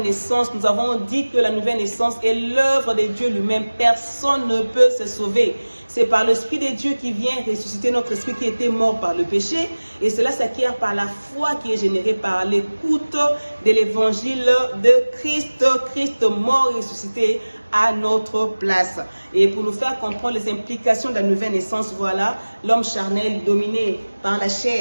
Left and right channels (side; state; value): both; inverted; correlation -1.00